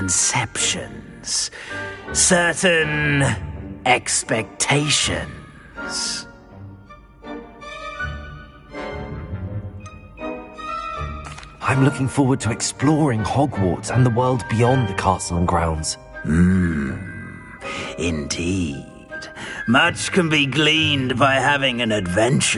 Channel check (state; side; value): identical; both; correlation 1.00